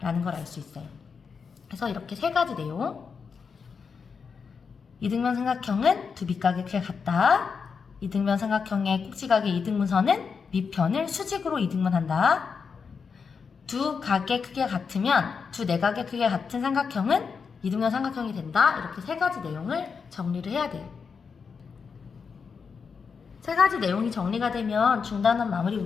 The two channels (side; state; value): right; quieter; 5.7 dB